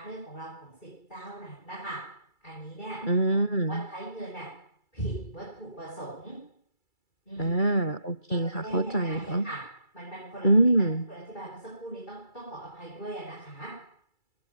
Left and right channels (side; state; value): right; late; 2.3 ms